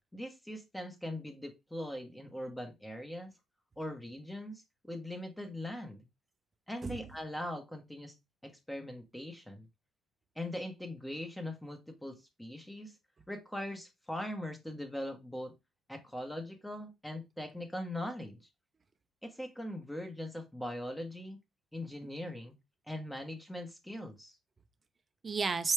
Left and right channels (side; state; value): both; normal; correlation 0.87